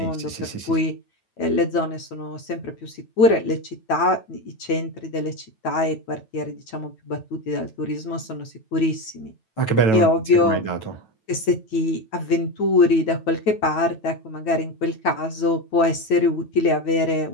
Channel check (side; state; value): right; late; 9.1 ms